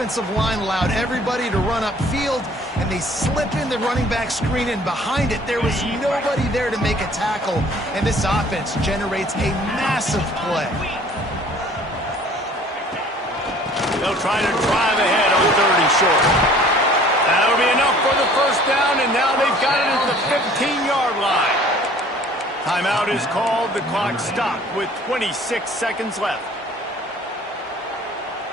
line allowed everybody to run upfield, and they slip in the running back screen, and behind it there was nobody there to make a tackle, and this offense generates a massive play. They'll try to drive ahead on 3rd and short. That'll be enough for the 1st down, and now they've got it at the 15-yard line. Timeout is called. The clock stopped with 26 seconds left.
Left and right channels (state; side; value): normal; both; correlation 0.52